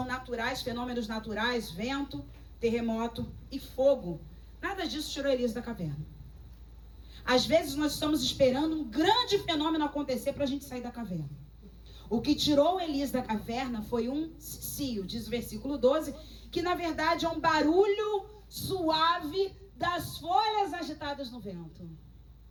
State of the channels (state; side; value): identical; both; correlation 1.00